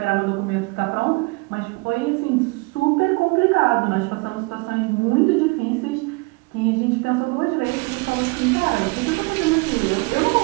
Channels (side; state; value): left; quieter; 27.5 dB